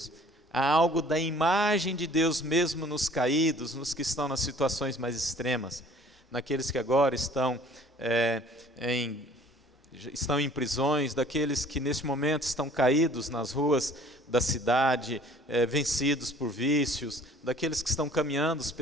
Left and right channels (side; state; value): both; normal; correlation 0.52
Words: há algo da imagem de Deus mesmo nos caídos, nos que estão nas situações mais extremas, naqueles que agora estão em prisões, daqueles que neste momento estão caídos nas ruas da cidade, vencidos por vícios, daqueles que estão caminhando